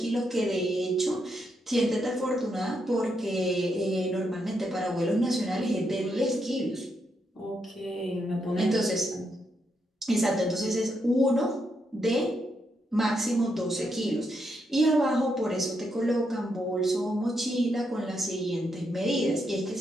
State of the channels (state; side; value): normal; both; correlation 0.80